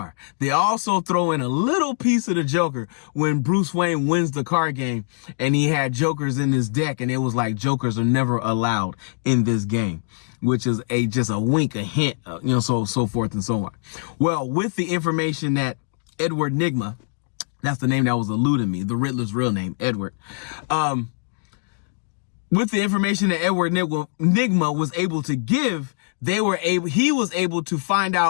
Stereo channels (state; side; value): silent; right; 64 dB below the other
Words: They also throw in a little piece of the Joker when Bruce Wayne wins the card game and he had Jokers in his deck, and it was like Jokers are never allowed in this game, which is just a wink, a hint, so forth and so on. Well, with the information that Edward Nygma, that's the name that was eluding me, the Riddler's real name, Edward, with the information that Edward Nygma was able to give, he was able to find